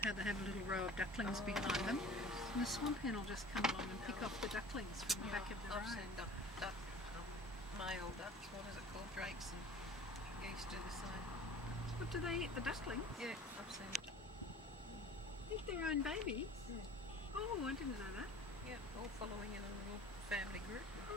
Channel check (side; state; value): both; normal; correlation 0.44